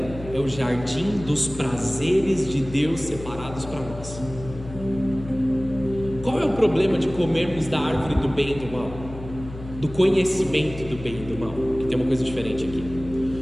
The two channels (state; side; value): noise; left; hum, 13 dB below the sound